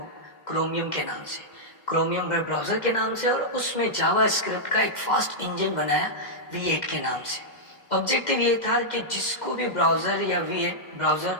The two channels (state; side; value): late; right; 2.1 ms